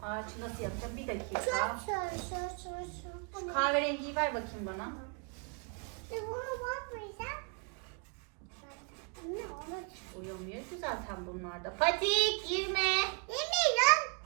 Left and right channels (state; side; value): quieter; left; 36.8 dB